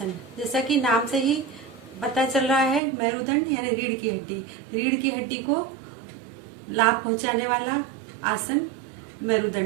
जैसा कि नाम से ही पता चल रहा है, मेरुदंड यानी रीढ़ की हड्डी, रीढ़ की हड्डी को लाभ पहुंचाने वाला आसन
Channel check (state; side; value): drops out; left; at 2.8 s